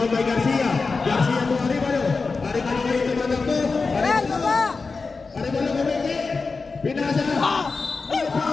by Garcia. Garcia to Arevalo. Arevalo ngayon tumatakbo. Ayan, baba! Arevalo kumiti. Pinasa.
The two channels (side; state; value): right; quieter; 4.3 dB